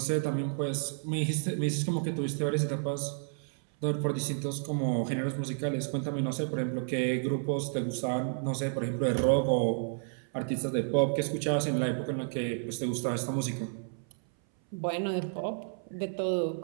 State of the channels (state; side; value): silent; left; 57 dB below the other